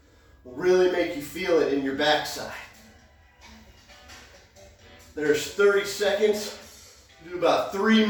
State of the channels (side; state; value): both; identical; correlation 1.00